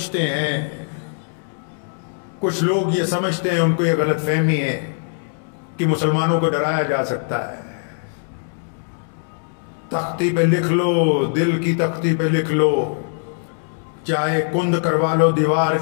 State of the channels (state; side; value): silent; right; digital silence